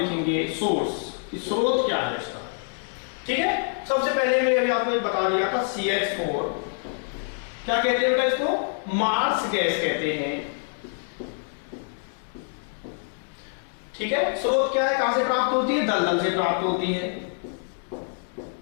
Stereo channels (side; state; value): right; silent; 61 dB below the other